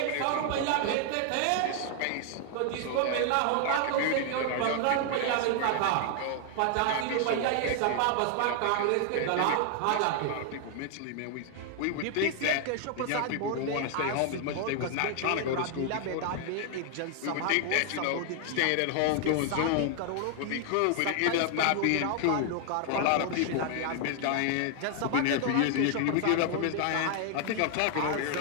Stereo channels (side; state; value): both; different; correlation 0.00